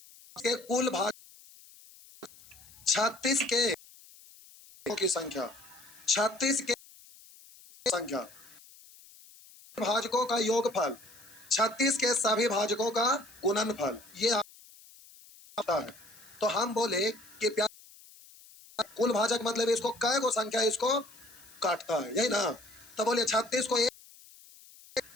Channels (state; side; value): noise; left; hiss, 23 dB below the sound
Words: कुल भाग 36 के की संख्या, 36 के संख्या भाजकों का योगफल, 36 के सभी भाजकों का गुणनफल, ये आता है। तो हम बोले कि कुल भाजक मतलब इसको कै गो संख्या इसको काटता है, यही ना? तो बोलिए 36 को 1